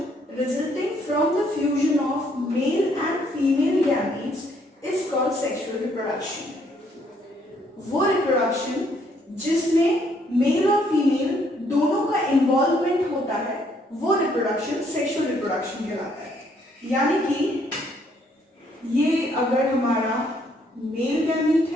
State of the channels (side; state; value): both; normal; correlation 0.68